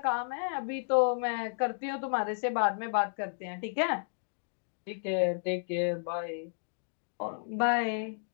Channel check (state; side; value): silent; right; digital silence